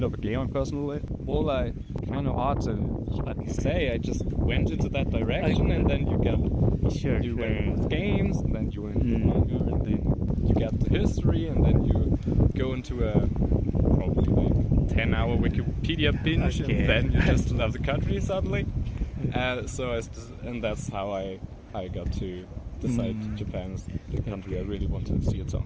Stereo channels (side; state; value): both; identical; correlation 1.00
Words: of a gamer personally, well, I kind of hard to say. I just went into that direction, and then you get you went into games, and then you went into manga, and then you get the history, and then you go into a probably 10-hour Wikipedia binge, and then you just love the country suddenly. And that's how I got to decide Japan is the country I really want to see at some